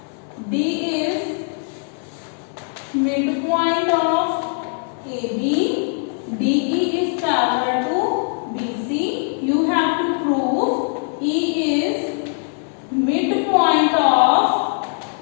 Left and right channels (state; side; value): silent; right; 58 dB below the other